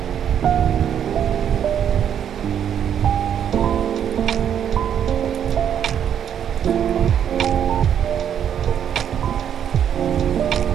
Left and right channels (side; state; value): left; quieter; 9.1 dB